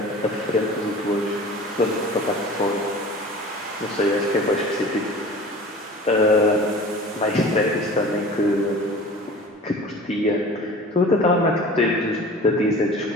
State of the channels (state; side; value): normal; both; correlation 0.41